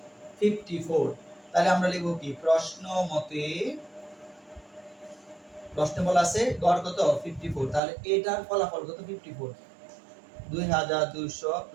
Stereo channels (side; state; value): left; drops out; at 7.8 s